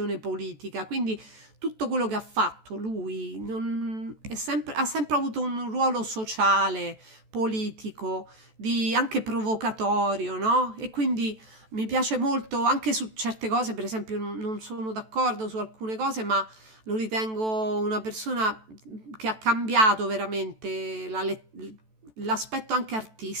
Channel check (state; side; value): late; left; 14 ms